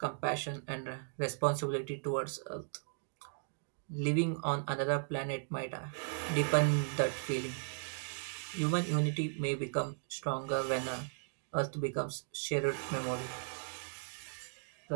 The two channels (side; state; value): left; silent; digital silence